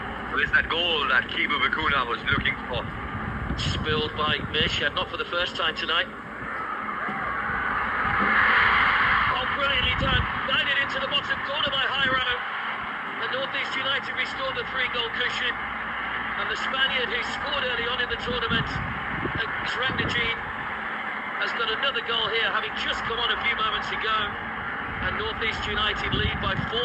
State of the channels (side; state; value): both; identical; correlation 1.00